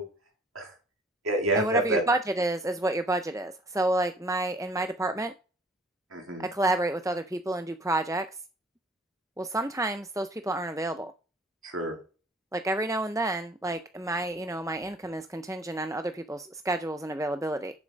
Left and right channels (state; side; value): normal; both; correlation 0.55